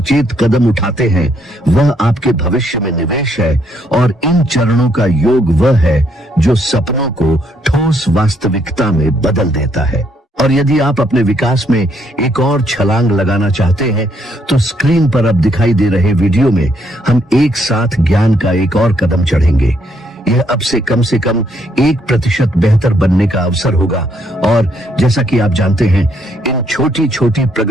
कदम उठाते हैं वह आपके भविष्य में निवेश है, और इन चरणों का योग वह है जो सपनों को ठोस वास्तविकता में बदल देता है। और यदि आप अपने विकास में एक और छलांग लगाना चाहते हैं तो स्क्रीन पर अब दिखाई दे रहे वीडियो में हम एक साथ ज्ञान का एक और कदम चढ़ेंगे। यह अब से कम 1% बेहतर बनने का अवसर होगा, और जैसा कि आप जानते हैं, इन छोटी छोटी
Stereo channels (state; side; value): normal; both; correlation 0.72